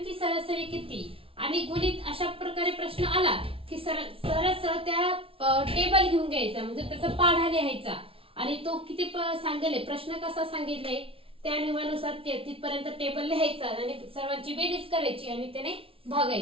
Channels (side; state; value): left; late; 0.26 ms